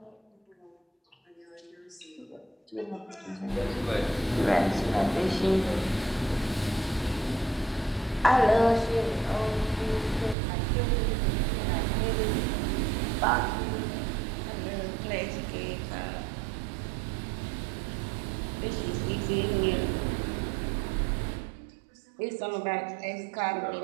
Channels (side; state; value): left; drops out; at 10.4 s